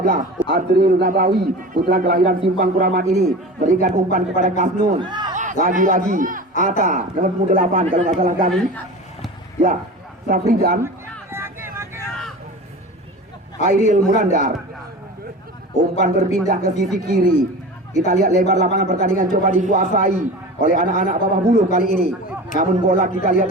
Azril Nabawi, putra kelahiran Simpang Kuramat ini berikan umpan kepada Kasnun. Lagi-lagi Ata nomor 8 kalau nggak salah kami. Ya, Safridan, Airil Munandar. Umpan berpindah ke sisi kiri. Kita lihat lebar lapangan pertandingan coba dikuasai oleh anak-anak Bawah Buluh kali ini. Namun bola kita lihat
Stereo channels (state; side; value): normal; both; correlation 0.34